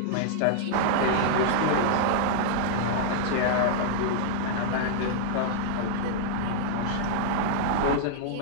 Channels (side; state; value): both; different; correlation -0.01